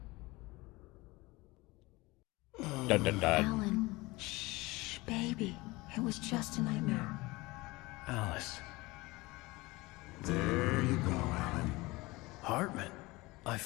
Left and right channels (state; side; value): quieter; right; 22.0 dB